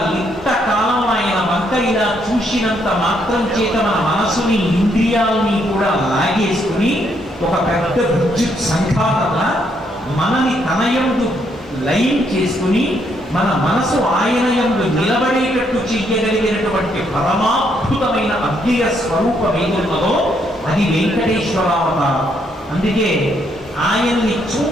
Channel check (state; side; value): normal; both; correlation 0.73